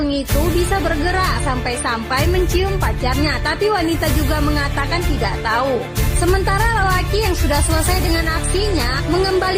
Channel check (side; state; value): both; identical; correlation 1.00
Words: itu bisa bergerak sampai-sampai mencium pacarnya. Tapi wanita juga mengatakan tidak tahu. Sementara lelaki yang sudah selesai dengan aksinya